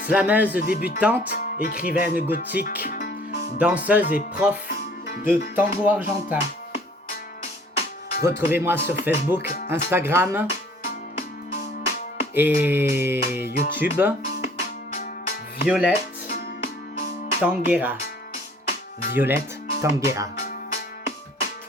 slameuse débutante, écrivaine gothique, danseuse et prof de tango argentin. Retrouvez-moi sur Facebook, Instagram et YouTube. Violette Tanguera. Violette Tanguera.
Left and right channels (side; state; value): both; normal; correlation 0.55